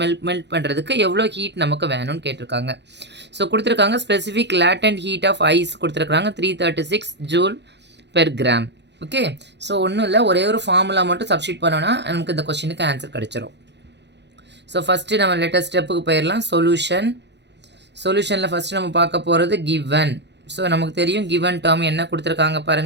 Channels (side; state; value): left; late; 0.50 ms